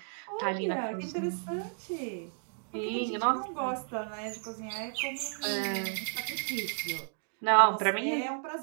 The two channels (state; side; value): silent; left; digital silence